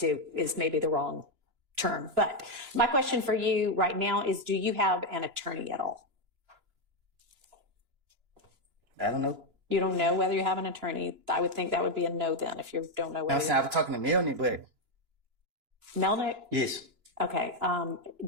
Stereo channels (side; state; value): left; late; 2.9 ms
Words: is maybe the wrong term. But my question for you right now is, do you have an attorney at all? I don't know. You don't know whether you have an attorney. I would think that would be a no then if you don't know whether. I was talking to Melanie, but Melnick? yes. Okay.